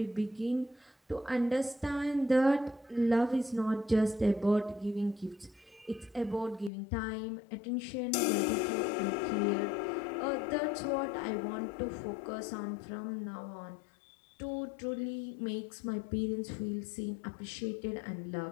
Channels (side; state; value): right; drops out; at 6.7 s